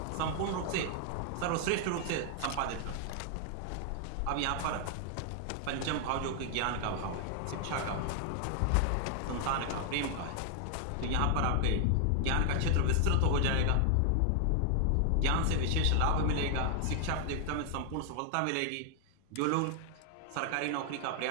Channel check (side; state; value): both; different; correlation 0.00